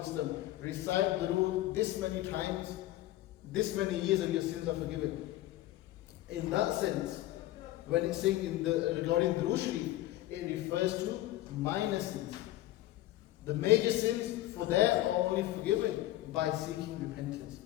recite Durood this many times, this many years and your sins are forgiven. In that sense, when it's saying regarding Durood Sharif, it refers to minor sins. The major sins for there are only forgiven by seeking repentance,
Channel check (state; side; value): quieter; right; 15.5 dB